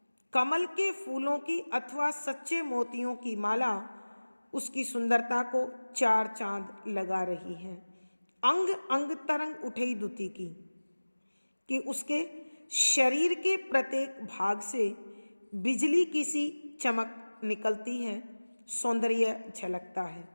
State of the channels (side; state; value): both; inverted; correlation -1.00